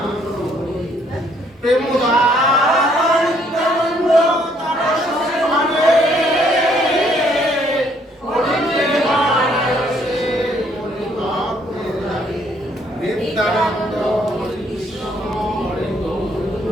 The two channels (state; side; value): normal; both; correlation 0.66